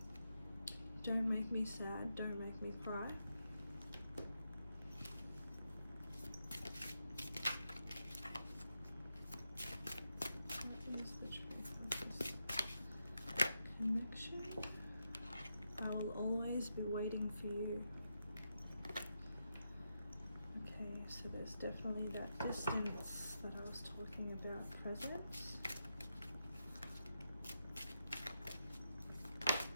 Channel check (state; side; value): inverted; both; correlation -0.86